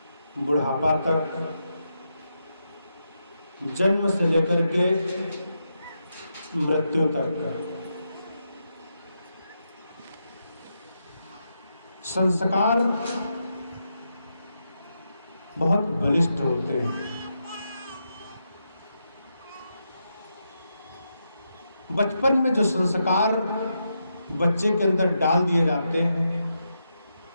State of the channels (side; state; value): both; inverted; correlation -0.84